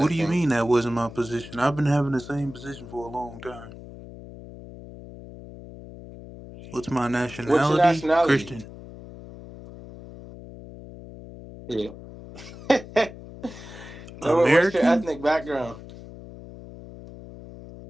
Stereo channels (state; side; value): noise; left; hum, 15 dB below the sound